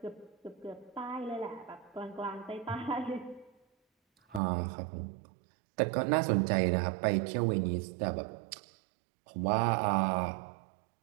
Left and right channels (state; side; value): drops out; left; at 4.4 s